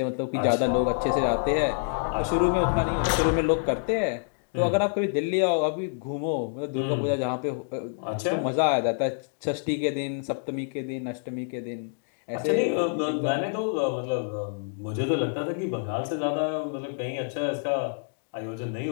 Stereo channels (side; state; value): right; silent; digital silence